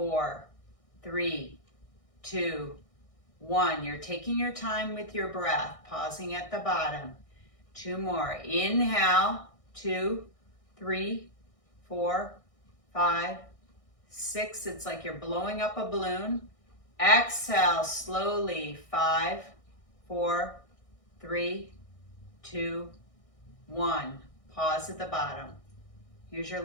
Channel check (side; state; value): right; late; 1.6 ms